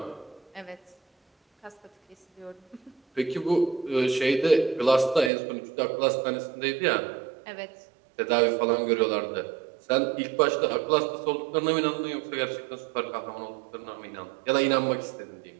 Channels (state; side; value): drops out; left; at 5.3 s